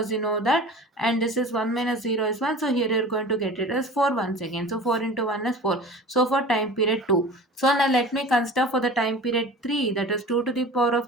you know that, and this is 1 minus 0 is 1. So here you're going to get it as 4 once again. So 4 into 1 is 4. So for time period 2. So now let me consider for the time period 3, that is 2 to the power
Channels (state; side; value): normal; both; correlation 0.38